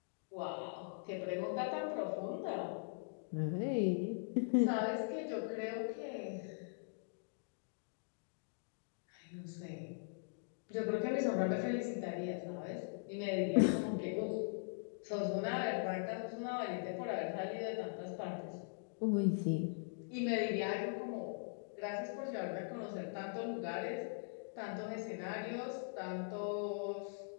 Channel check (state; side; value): silent; right; digital silence